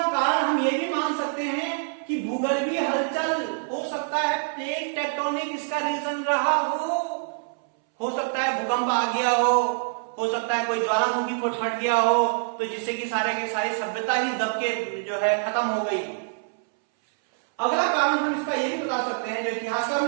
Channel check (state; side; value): silent; left; 61 dB below the other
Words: कारण हम ये भी मान सकते हैं कि भूगर्भीय हलचल हो सकता है, प्लेट टेक्टोनिक इसका रीजन रहा हो सकता है भूकंप आ गया हो सकता है कोई ज्वालामुखी फट गया हो, तो जिससे कि सारे की सारी सभ्यता ही दब के जो है खत्म हो गई। अगला कारण हम इसका ये भी बता सकते हैं, जो इतिहासकार